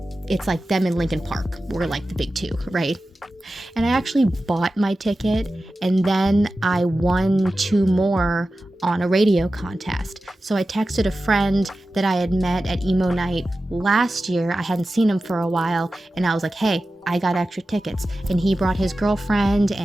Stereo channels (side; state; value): both; normal; correlation 0.94